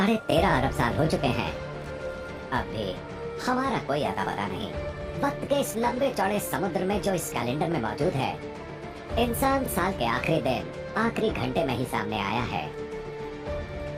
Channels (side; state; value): both; identical; correlation 1.00